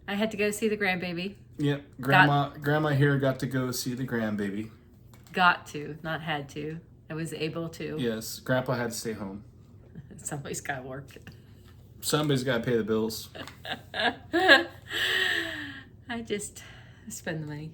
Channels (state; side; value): identical; both; correlation 1.00